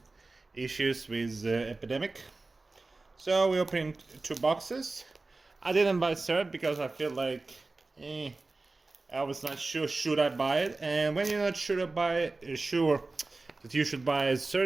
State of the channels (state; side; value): quieter; left; 3.4 dB